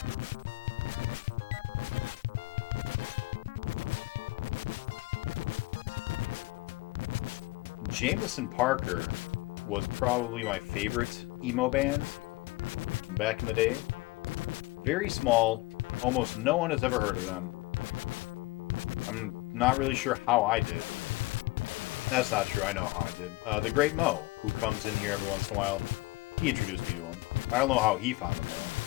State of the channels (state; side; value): quieter; right; 21.3 dB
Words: Jameson Parker was probably my favorite emo band back in the day. Very small. Almost no one has ever heard of them. I'm not really sure how I did. That's not true. I know how I did. The Great Mo, who comes in here every once in a while, he introduced me to him. I don't know how he found them, though.